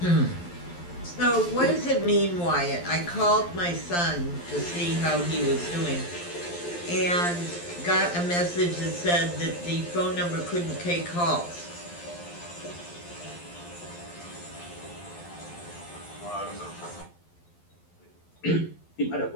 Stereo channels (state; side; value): late; right; 12 ms